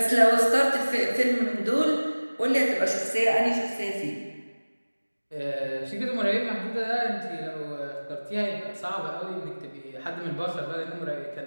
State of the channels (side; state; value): both; inverted; correlation -1.00